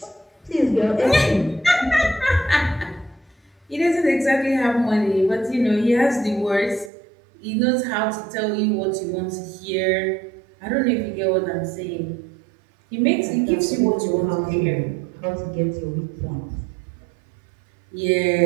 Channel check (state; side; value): drops out; left; at 6.9 s